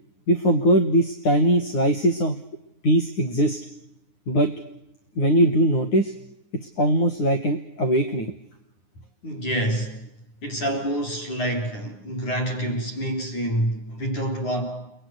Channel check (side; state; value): right; late; 9.7 ms